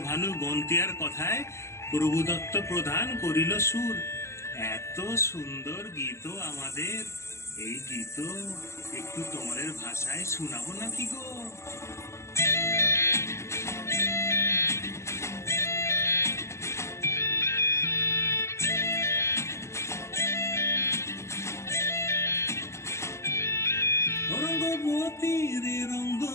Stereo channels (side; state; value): right; late; 0.13 ms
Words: ভানু গন্তিয়ার কথায় প্রভুদত্ত প্রধান করিল সুর। এত সুন্দর গীত আমাদের, এই গীত একটু তোমাদের ভাষায় শোনাবো নাকি গো? রঙ্গবতী রে